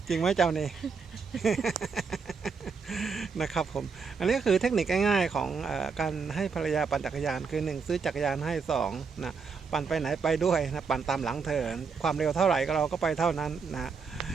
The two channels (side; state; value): left; quieter; 5.3 dB